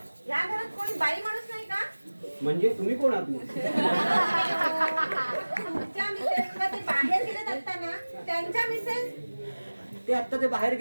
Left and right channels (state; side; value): inverted; both; correlation -1.00